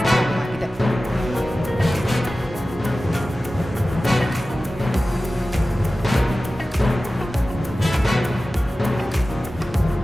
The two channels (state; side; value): normal; both; correlation 0.96